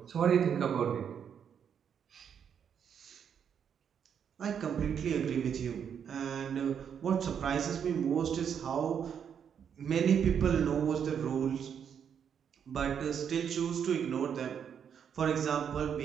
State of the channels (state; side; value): quieter; left; 7.9 dB